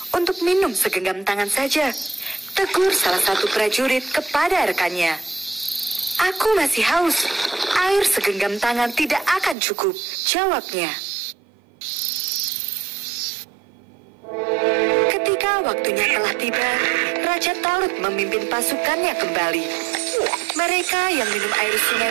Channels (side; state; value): left; drops out; at 9.6 s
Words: untuk minum segenggam tangan saja?" tegur salah satu prajurit kepada rekannya. "Aku masih haus. Air segenggam tangan tidak akan cukup," jawabnya. Ketika waktunya telah tiba, Raja Talut memimpin pasukannya kembali. Mereka yang minum air sungai